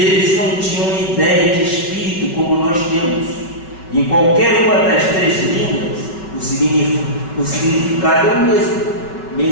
não tinham ideia de espírito como nós temos. Em qualquer uma das três línguas, o significado é o mesmo:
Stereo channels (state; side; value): late; right; 5.4 ms